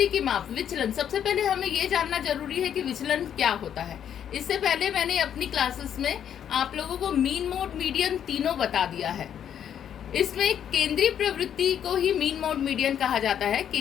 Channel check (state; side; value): quieter; right; 9.2 dB